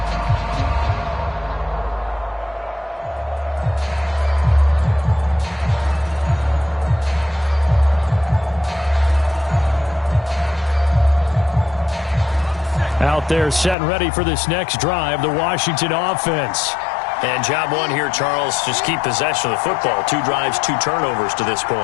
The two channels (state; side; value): drops out; right; at 13.8 s